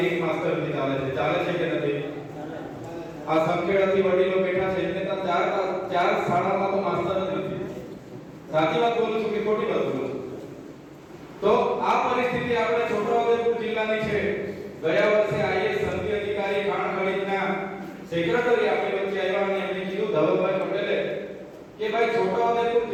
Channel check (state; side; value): identical; both; correlation 1.00